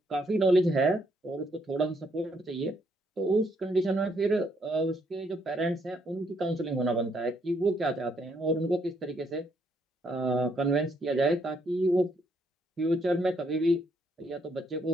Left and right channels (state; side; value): normal; both; correlation 0.72